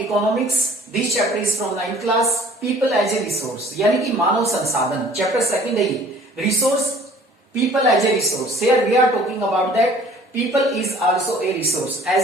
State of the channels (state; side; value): normal; both; correlation 0.52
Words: This chapter is from 9th class. People as a resource. यानी कि मानव संसाधन. Chapter second है ये. Resource. People as a resource. Here we are talking about that. People is also a resource.